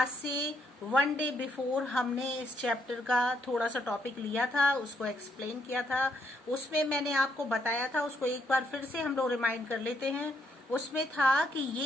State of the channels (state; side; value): normal; both; correlation 0.74